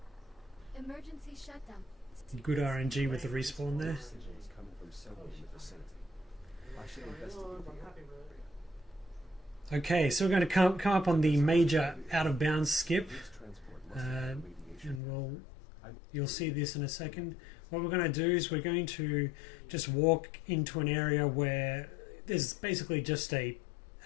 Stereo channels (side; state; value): right; drops out; at 15.0 s